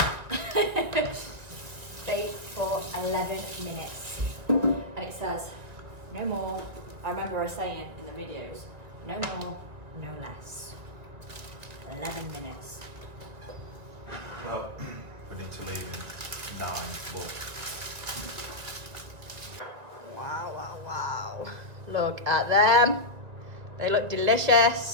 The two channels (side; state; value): left; late; 1.7 ms